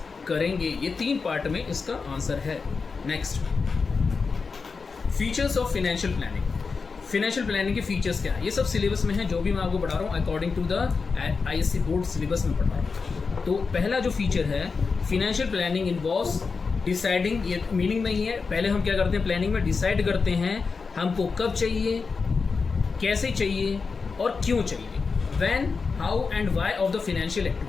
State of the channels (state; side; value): quieter; right; 4.8 dB